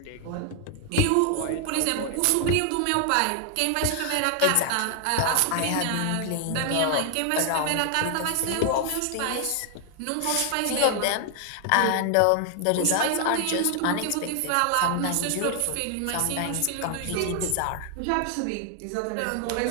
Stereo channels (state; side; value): different; both; correlation 0.00